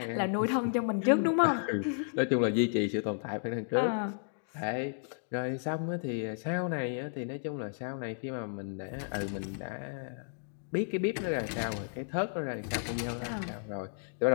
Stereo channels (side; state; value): right; silent; digital silence